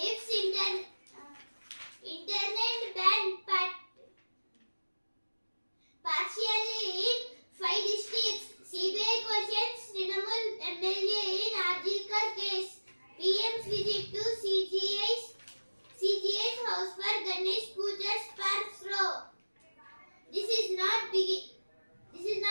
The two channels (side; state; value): both; inverted; correlation -1.00